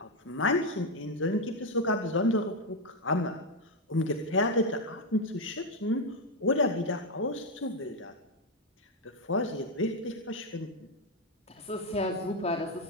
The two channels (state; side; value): normal; both; correlation 0.05